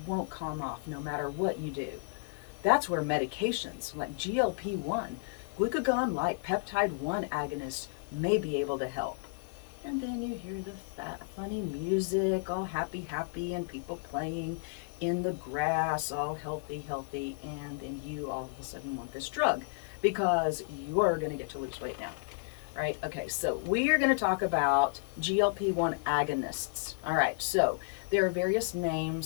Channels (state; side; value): silent; right; digital silence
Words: won't calm off no matter what you do. That's where medications like GLP-1, glucagon like peptide 1 agonists may be able to help. And then you hear the funny music, all happy, happy, and people playing in the grass, all healthy, healthy, and then you all of a sudden want this drug because you're going to get to lose weight now. Right? Okay, so we are going to talk about GLP-1 agonists. All right, so there are various